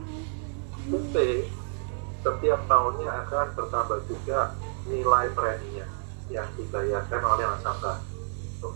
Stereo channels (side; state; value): left; silent; digital silence